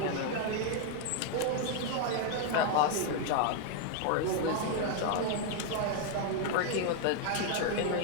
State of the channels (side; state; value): both; different; correlation 0.00